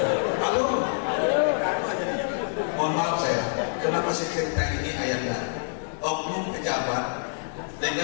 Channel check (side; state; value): right; silent; digital silence